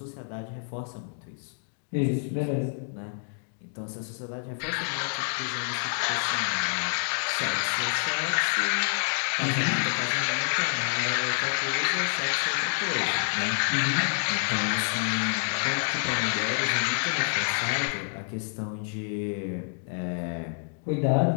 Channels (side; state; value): right; silent; digital silence